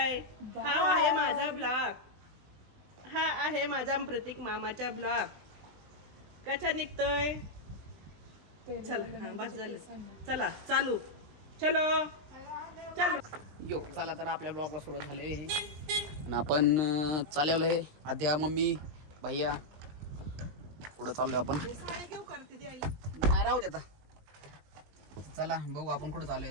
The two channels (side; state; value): left; late; 20 ms